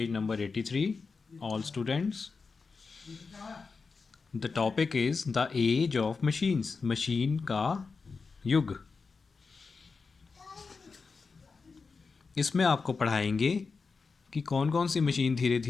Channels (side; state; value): right; quieter; 4.7 dB